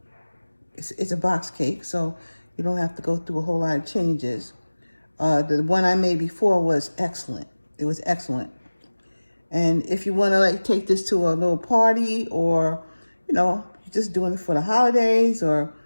it's a box cake, so you don't have to go through a whole lot of changes. The one I made before was excellent. It was excellent. And if you want to take this to a little party or, you're just doing it for the holidays or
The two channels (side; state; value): both; inverted; correlation -1.00